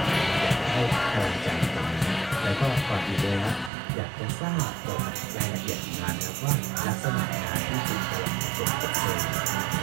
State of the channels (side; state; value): left; drops out; at 3.7 s